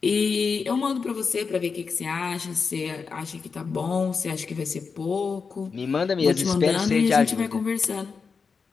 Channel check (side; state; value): right; quieter; 5.2 dB